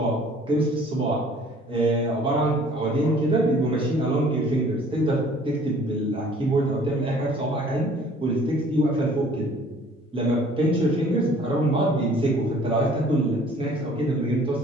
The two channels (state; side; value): normal; both; correlation 0.53